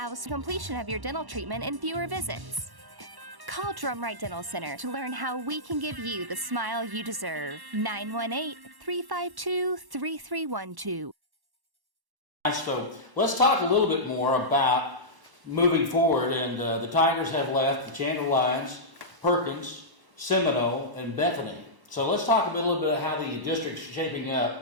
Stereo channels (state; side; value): late; left; 1.1 ms